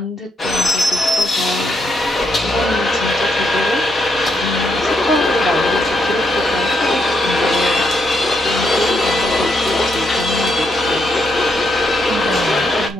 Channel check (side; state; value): both; normal; correlation 0.78